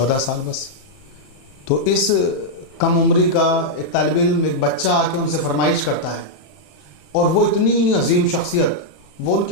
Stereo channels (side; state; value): right; late; 33 ms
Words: سال بس۔ تو اس کم عمری کا ایک طالب علم، ایک بچہ آ کے ان سے فرمائش کرتا ہے، اور وہ اتنی عظیم شخصیت، وہ ان